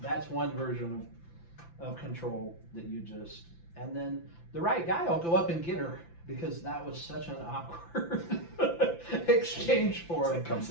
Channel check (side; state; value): right; late; 5.9 ms